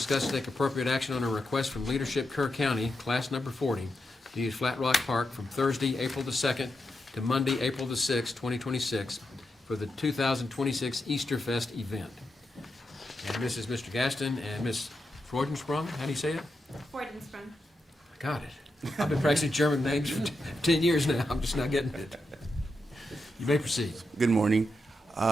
and take appropriate action on a request from Leadership Kerr County, class number 40, to use Flat Rock Park from Thursday, April the 2nd to Monday, April the 6th, 2026 for the 2026 Easter Fest event. And this is Mr. Gaston and Miss Freudensprung. How do you say it? Freudensprung. I got it. I've been practicing German names for 10 years now. I'm just not getting it. You may proceed. Good morning.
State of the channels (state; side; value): normal; both; correlation 0.86